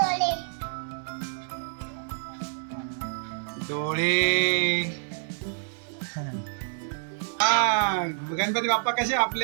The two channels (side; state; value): left; silent; 60 dB below the other